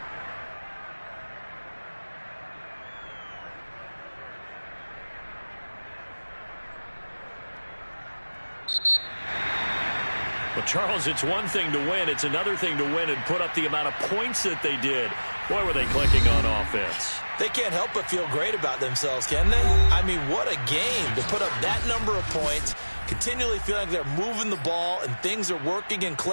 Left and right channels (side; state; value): both; inverted; correlation -1.00